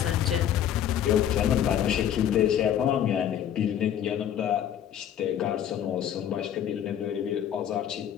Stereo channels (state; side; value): quieter; right; 10.1 dB